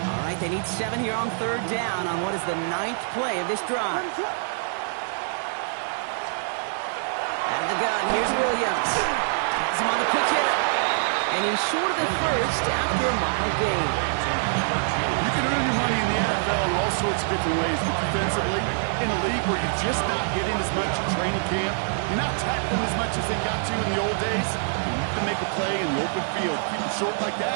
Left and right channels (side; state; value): left; silent; digital silence